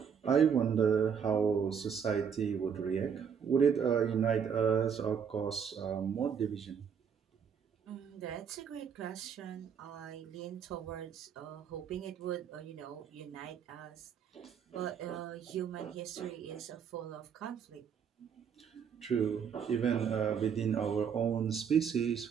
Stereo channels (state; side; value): quieter; left; 7.3 dB